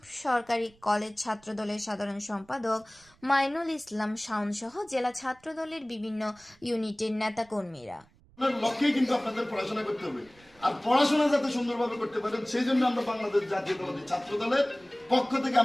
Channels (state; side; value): noise; right; rumble, 29 dB below the sound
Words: সরকারি কলেজ ছাত্রদলের সাধারণ সম্পাদক মাইনুল ইসলাম শাওন সহ জেলা ছাত্রদলের বিভিন্ন ইউনিটের নেতাকর্মীরা। লক্ষ্যেই কিন্তু আপনাদের পড়াশোনা করতে হবে, আর পড়াশোনা যাতে সুন্দরভাবে করতে পারেন সেই জন্য আমরা বাংলাদেশ জাতীয়তাবাদী ছাত্রদলের পক্ষ থেকে